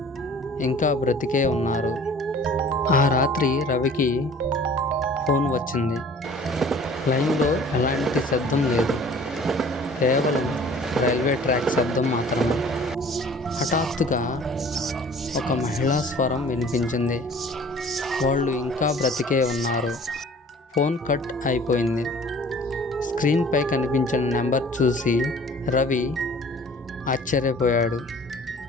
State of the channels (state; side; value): normal; both; correlation 0.49